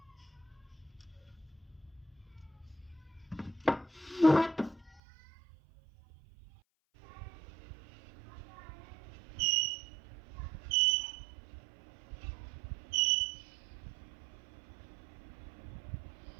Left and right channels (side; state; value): left; drops out; at 5.0 s